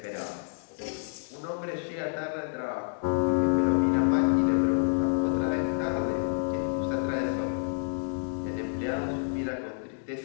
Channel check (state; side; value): silent; right; digital silence